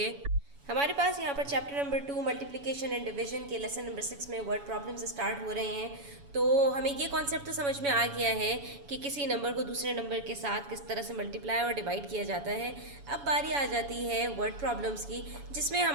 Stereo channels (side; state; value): left; late; 7.1 ms